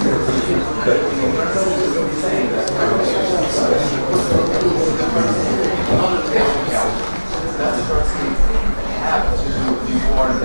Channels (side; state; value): both; inverted; correlation -1.00